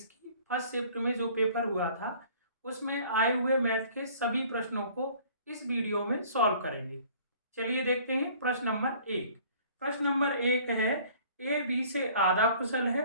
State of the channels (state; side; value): inverted; both; correlation -0.53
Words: की फर्स्ट शिफ्ट में जो पेपर हुआ था उसमें आए हुए मैथ के सभी प्रश्नों को इस वीडियो में सॉल्व करेंगे। चलिए देखते हैं प्रश्न नंबर एक। प्रश्न नंबर एक है, ए बी से आधा कुशल